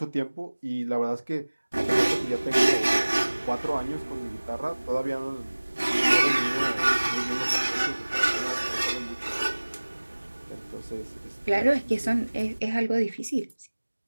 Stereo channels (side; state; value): both; inverted; correlation -1.00